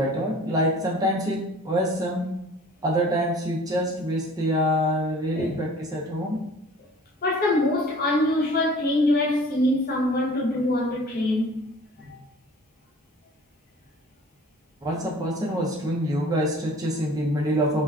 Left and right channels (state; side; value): normal; both; correlation 0.48